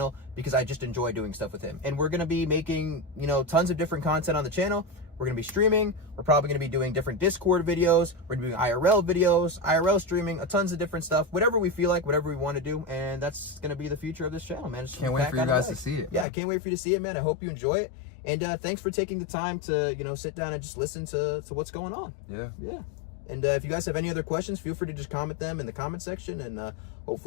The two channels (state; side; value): drops out; right; at 16.2 s